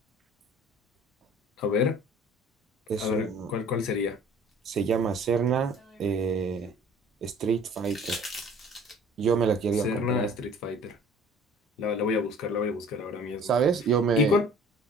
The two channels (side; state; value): both; normal; correlation 0.49